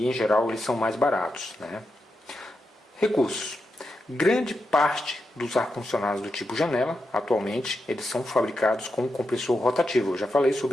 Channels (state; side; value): normal; both; correlation 0.87